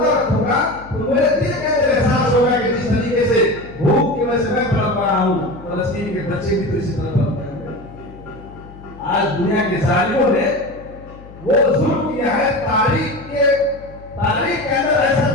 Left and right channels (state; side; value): noise; left; hum, 19 dB below the sound